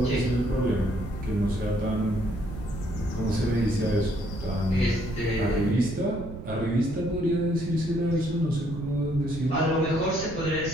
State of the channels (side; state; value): right; noise; rumble, 10 dB below the sound